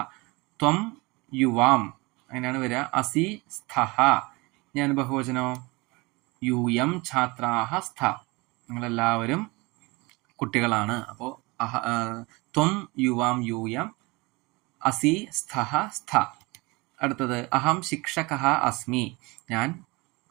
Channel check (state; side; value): quieter; left; 24.8 dB